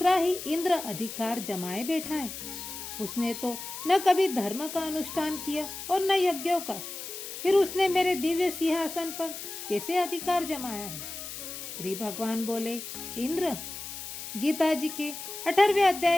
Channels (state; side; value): noise; left; hiss, 9 dB below the sound